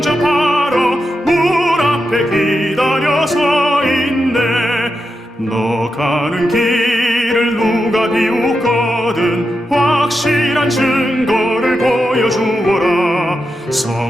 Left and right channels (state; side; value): normal; both; correlation 0.87